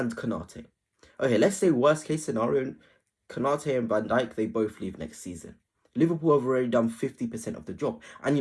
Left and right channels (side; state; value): both; identical; correlation 1.00